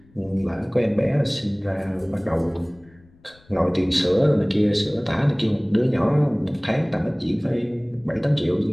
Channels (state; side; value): noise; left; rumble, 29 dB below the sound